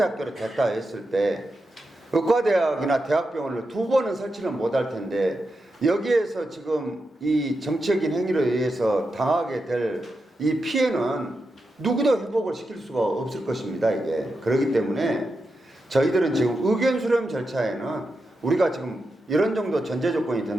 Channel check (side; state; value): both; normal; correlation 0.88